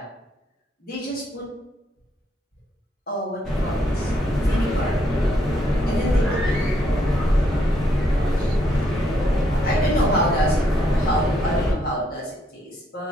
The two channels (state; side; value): normal; both; correlation 0.74